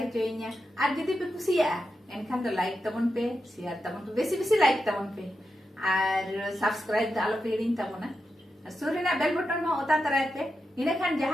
और जदि पे कुसिया एनखान तो लाइक तबन पे share तबन पे बेसी बेसी लाइक तबन पे और subscribe आलो पे हिड़िन तबना सुरेना बेल बटन में ओता तराय पे इने खान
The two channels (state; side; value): normal; both; correlation 0.88